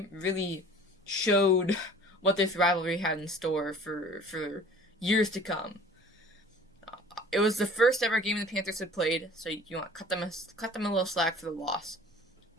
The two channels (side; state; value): both; normal; correlation 0.47